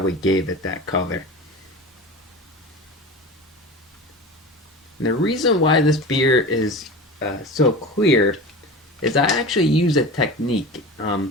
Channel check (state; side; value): normal; both; correlation 0.32